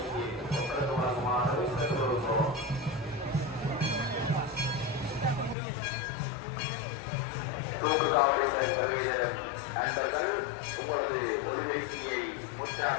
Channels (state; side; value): drops out; right; at 5.6 s